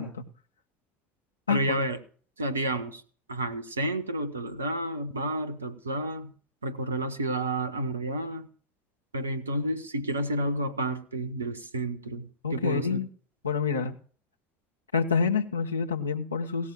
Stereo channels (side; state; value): both; inverted; correlation -0.58